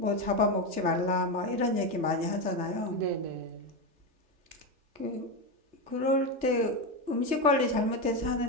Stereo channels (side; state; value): left; late; 3.3 ms